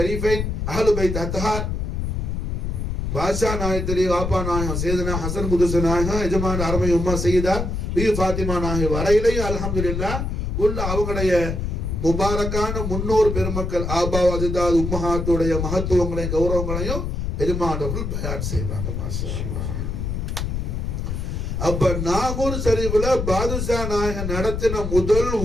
அஹ்லு பைத் அத்ஹார் பாஷா நாயத்திரி வாப்பா நாயகம் சேதனா ஹசன் குதுச நாயகம் எஜமான அருமை உம்மா செய்தா ஃபாத்திமா நாயகம் வரையிலையும் அல்ஹம்துலில்லாஹ் உள்ள அவங்களுடைய முபாரக்கான முன்னோர் பெருமக்கள் ஆபா அஜிதாத் உம்மஹாத்துடைய மகத்துவங்களையும் கௌரவங்களையும் எஜமானவர்கள் பயான் செய்வாங்க. மாஷா அல்லாஹ். அப்ப நாகூர் ஷரீஃப்ல பாதுஷா நாயகன் நடத்தின முதல்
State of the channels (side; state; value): left; noise; rumble, 2 dB below the sound